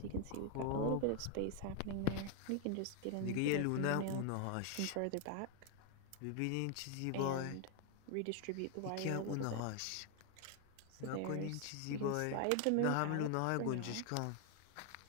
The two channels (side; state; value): both; different; correlation 0.00